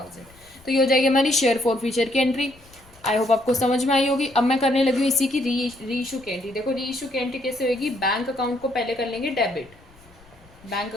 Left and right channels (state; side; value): noise; left; rumble, 26 dB below the sound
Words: तो ये हो जाएगी हमारी शेयर फोर फीचर की एंट्री। आई होप आपको समझ में आई होगी। अब मैं करने लगी हूँ इसी की री इशू की एंट्री। देखो, री इशू की एंट्री कैसे होगी, बैंक अकाउंट को पहले कर लेंगे डेबिट, बैंक